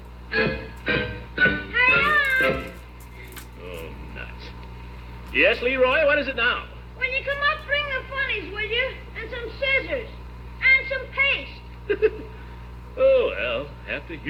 Hey, Unc! Oh, nuts. Yes, Leroy, what is it now? When you come up, bring the funnies, will you? And some scissors. And some paste. Oh, well, have to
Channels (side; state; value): both; identical; correlation 1.00